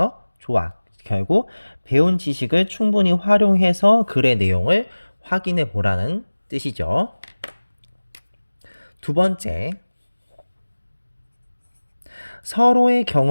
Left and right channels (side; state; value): both; inverted; correlation -1.00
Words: 좋아. 결국 배운 지식을 충분히 활용해서 글의 내용을 확인해 보라는 뜻이죠. 두 번째, 서로의